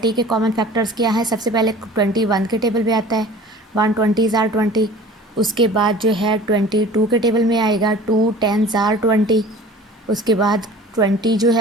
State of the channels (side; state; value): both; normal; correlation 0.44